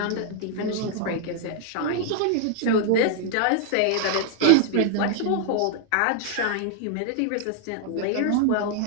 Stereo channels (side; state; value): both; different; correlation 0.00